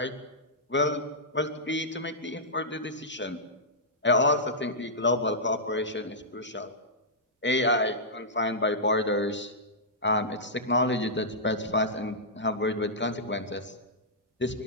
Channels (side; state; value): both; normal; correlation -0.13